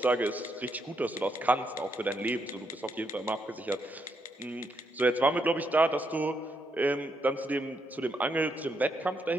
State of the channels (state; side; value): normal; both; correlation 0.78